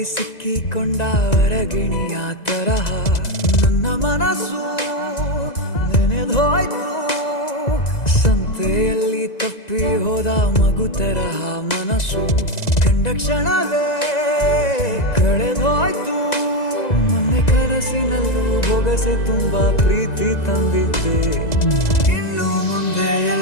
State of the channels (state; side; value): late; right; 1.9 ms